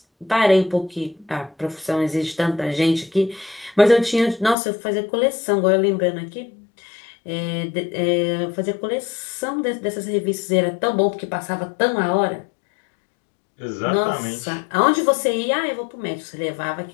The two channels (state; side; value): drops out; right; at 4.5 s